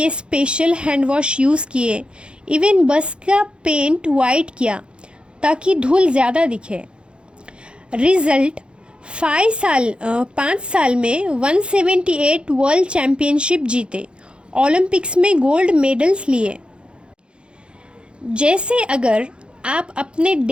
स्पेशल हैंड वॉश यूज़ किए, इवन बस का पेंट वाइट किया ताकि धूल ज़्यादा दिखे। रिजल्ट, 5 साल में 178 वर्ल्ड चैम्पियनशिप जीते, ओलंपिक्स में गोल्ड मेडल्स लिए। जैसे अगर आप अपने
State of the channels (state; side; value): late; left; 0.055 ms